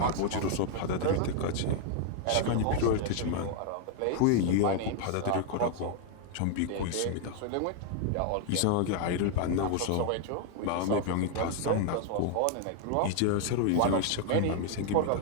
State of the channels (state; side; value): different; both; correlation 0.00